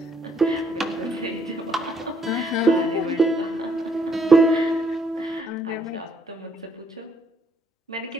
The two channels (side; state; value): both; normal; correlation 0.69